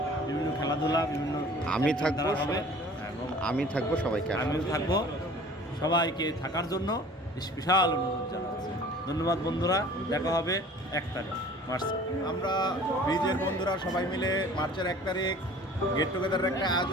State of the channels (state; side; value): normal; both; correlation 0.47